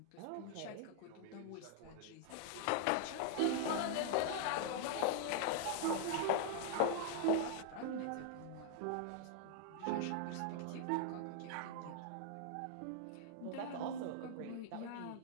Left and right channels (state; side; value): different; both; correlation 0.00